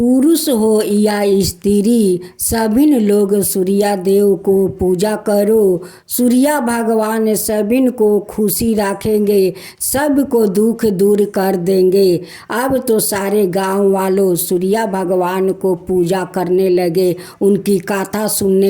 हो या स्त्री, सभी लोग सूर्य देव को पूजा करो। सूर्य भगवान सभी को खुशी रखेंगे, सबको दुख दूर कर देंगे। अब तो सारे गांव वालों सूर्य भगवान को पूजा करने लगे, उनकी कथा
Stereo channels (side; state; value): both; identical; correlation 1.00